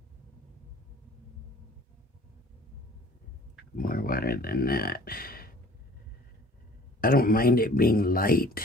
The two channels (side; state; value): both; normal; correlation 0.51